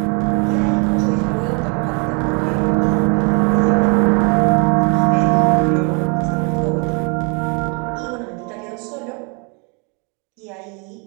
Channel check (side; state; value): left; quieter; 35.5 dB